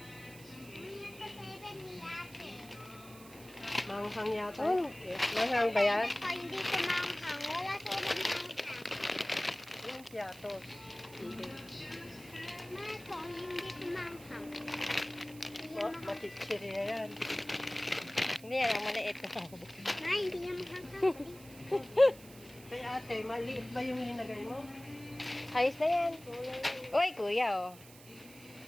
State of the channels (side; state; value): right; noise; hiss, 19 dB below the sound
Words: Manghang yata. Oh. Manghang ba yan? Hindi ko manghang. Wala silang manghang. Yung piatos. Hindi. Mato, hindi ko manghang. Matitsiriya yan. Hindi yan, ang maliit. Ay, hindi yan manghang. Kay ate, maliit ba yung linagay mo? Ayos na yan. Uy, kuya, oh.